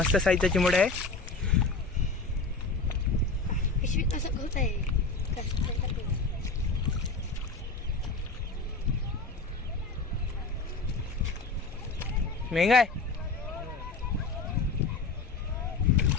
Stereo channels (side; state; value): right; quieter; 3.8 dB